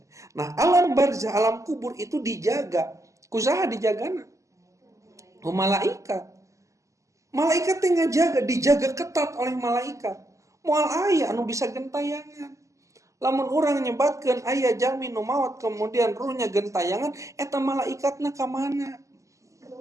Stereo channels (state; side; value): late; left; 0.16 ms